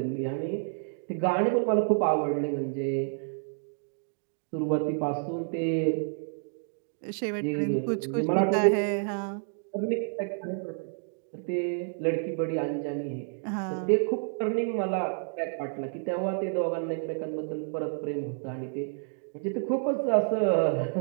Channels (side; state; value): left; silent; 58 dB below the other